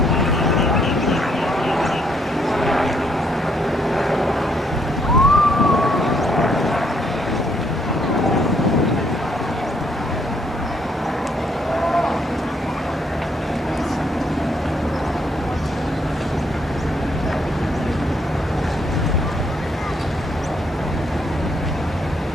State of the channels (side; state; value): both; normal; correlation 0.71